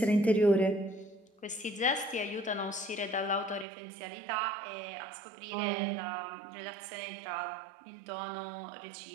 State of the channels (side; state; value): left; drops out; at 3.7 s